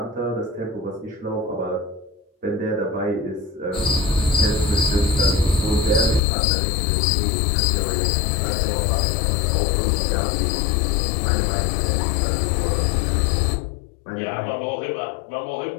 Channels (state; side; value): drops out; right; at 6.2 s